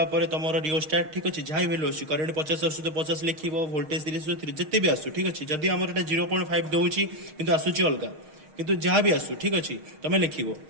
तुम रियोस्टाट ठीक अच्छे जहाँ भी वैल्यू आसूँ करेन्ट 50 आसू तो 50 लिख वोल्टेज 30 जिते भी आसू ठीक अच्छे जदि आमर 0.5 दूसरी कि आसूची अलग किंतु जहाँ भी आसू ठीक अच्छे तुम लिख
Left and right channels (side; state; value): left; late; 6.5 ms